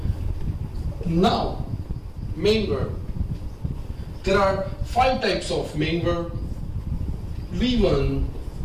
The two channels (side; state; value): both; identical; correlation 1.00